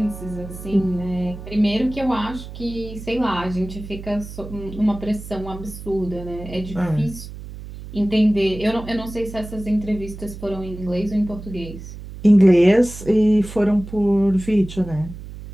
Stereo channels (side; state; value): right; noise; hum, 12 dB below the sound